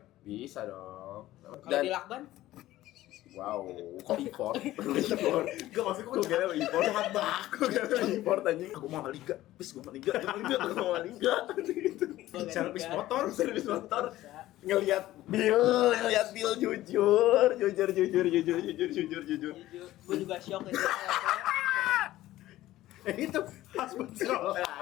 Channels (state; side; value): quieter; right; 15.4 dB